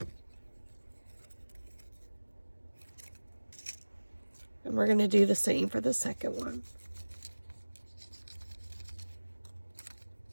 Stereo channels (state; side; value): inverted; both; correlation -1.00